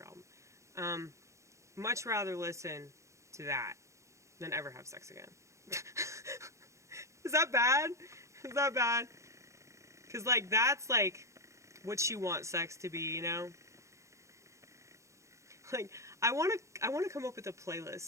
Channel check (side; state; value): left; late; 0.14 ms